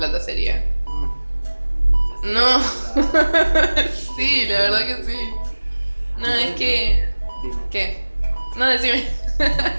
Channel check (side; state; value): both; inverted; correlation -1.00